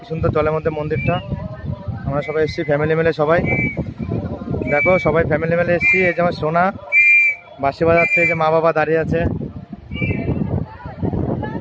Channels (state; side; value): identical; both; correlation 1.00